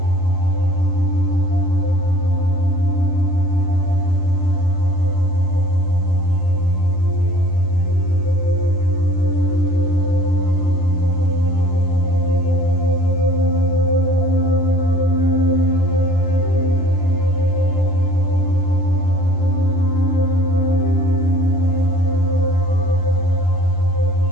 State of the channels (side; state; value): right; late; 11 ms